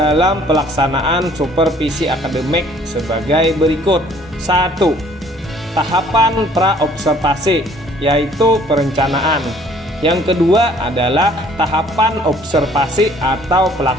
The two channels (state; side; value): normal; both; correlation 0.57